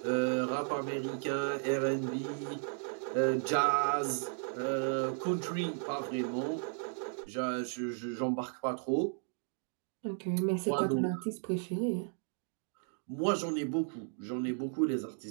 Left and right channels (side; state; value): left; silent; 55 dB below the other